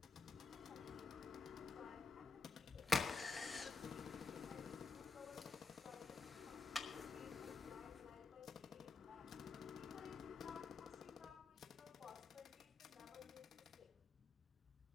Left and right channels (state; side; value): quieter; right; 4.4 dB